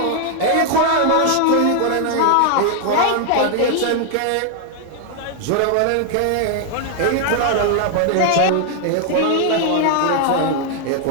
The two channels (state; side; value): different; both; correlation 0.00